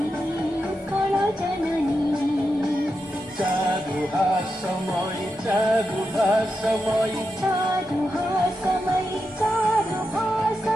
ଉତ୍କଳ ଜନନୀ। ଚାରୁ ହାସମୟୀ, ଚାରୁ ହାସମୟୀ, ଚାରୁ ହାସମୟୀ, ଚାରୁ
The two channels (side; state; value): both; normal; correlation 0.87